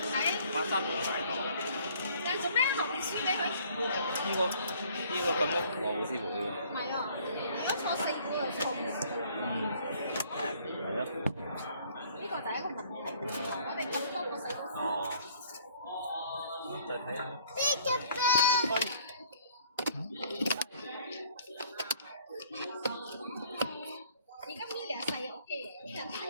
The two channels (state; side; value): inverted; both; correlation -0.58